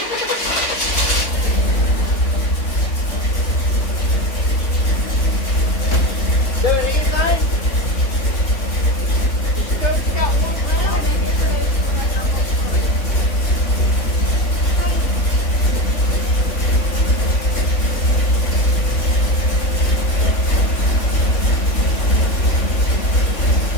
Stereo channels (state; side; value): late; right; 3.3 ms